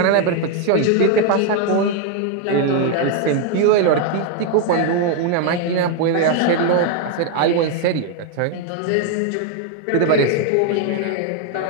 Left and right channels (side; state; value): both; different; correlation 0.01